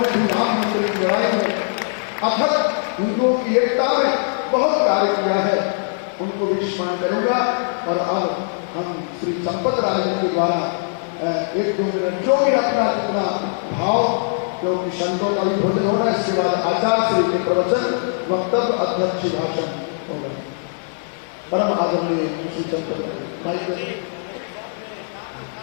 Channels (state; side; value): silent; right; 64 dB below the other